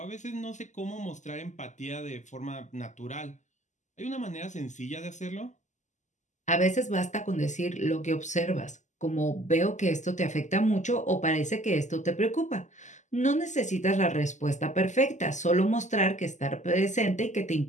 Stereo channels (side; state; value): right; late; 0.34 ms